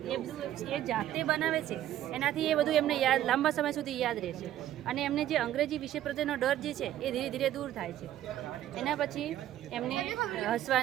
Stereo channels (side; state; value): left; quieter; 12.5 dB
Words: કે એ બધું એ જાતે બનાવે છે, એનાથી એ બધું એમને યાદ લાંબા સમય સુધી યાદ રહેશે. અને એમને જે અંગ્રેજી વિષય પ્રત્યેનો ડર જે છે એ ધીરે ધીરે દૂર થાય છે. એના પછી એમને